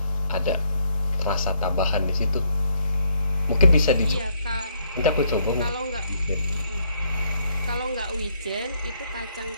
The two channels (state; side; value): inverted; both; correlation -0.72